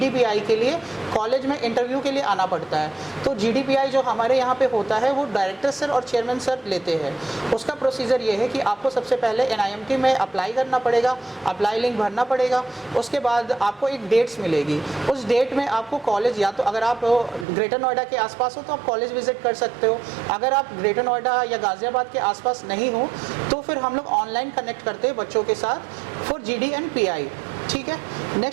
के लिए कॉलेज में इंटरव्यू के लिए आना पड़ता है। तो GDPI जो हमारे यहाँ पे होता है वो डायरेक्टर सर और चेयरमैन सर लेते हैं। उसका प्रोसीजर ये है कि आपको सबसे पहले NIMT में अप्लाई करना पड़ेगा, अप्लाई लिंक भरना पड़ेगा। उसके बाद आपको एक डेट्स मिलेगी, उस डेट में आपको कॉलेज, या तो अगर आप ग्रेटर नोएडा के आसपास हो तो आप कॉलेज विजिट कर सकते हो। अगर आप ग्रेटर नोएडा या गाज़ियाबाद के आसपास नहीं हो तो फिर हम लोग ऑनलाइन कनेक्ट करते हैं बच्चों के साथ फॉर GD एंड PI। ठीक है,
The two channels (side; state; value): left; drops out; at 17.4 s